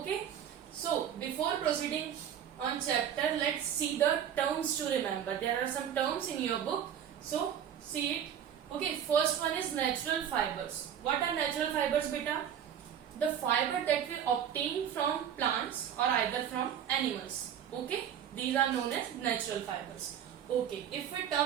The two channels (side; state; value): left; quieter; 9.2 dB